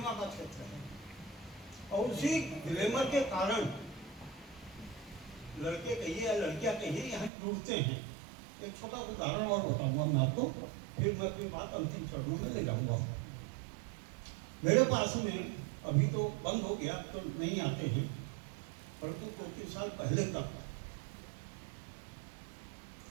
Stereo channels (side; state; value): left; drops out; at 7.3 s